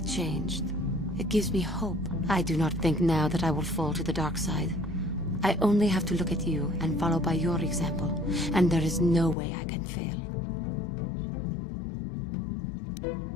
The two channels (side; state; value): right; drops out; at 9.3 s